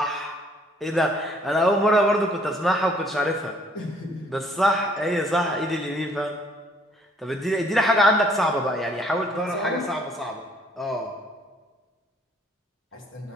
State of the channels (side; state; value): both; normal; correlation 0.62